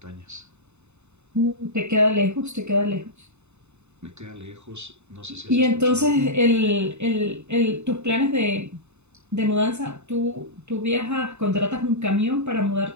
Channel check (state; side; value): late; left; 0.82 ms